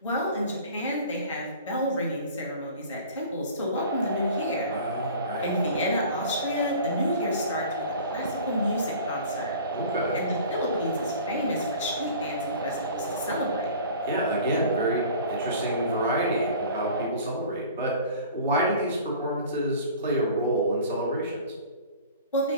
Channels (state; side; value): inverted; both; correlation -0.43